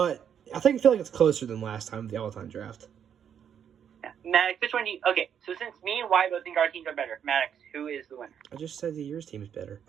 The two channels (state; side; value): quieter; left; 8.5 dB